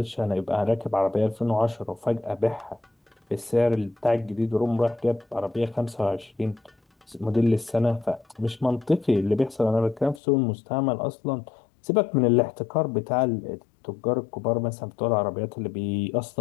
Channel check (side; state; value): right; drops out; at 10.2 s